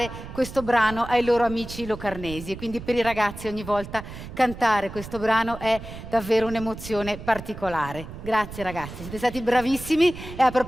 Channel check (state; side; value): noise; right; rumble, 12 dB below the sound